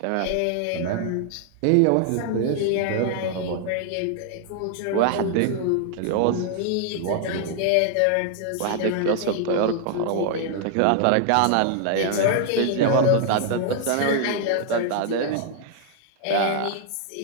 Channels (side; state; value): both; different; correlation 0.00